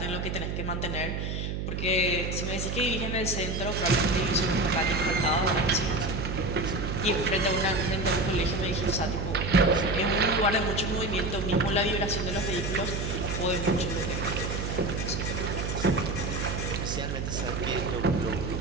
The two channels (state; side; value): noise; right; hum, 3 dB below the sound